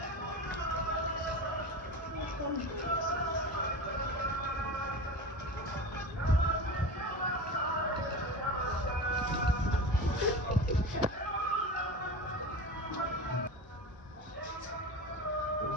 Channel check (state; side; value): normal; both; correlation 0.29